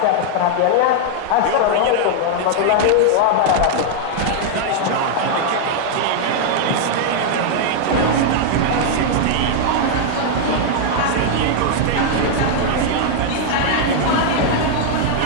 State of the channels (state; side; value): different; both; correlation -0.01